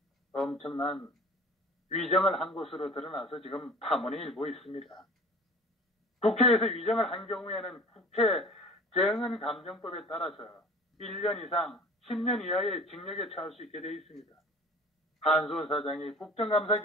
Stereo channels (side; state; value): both; normal; correlation 0.44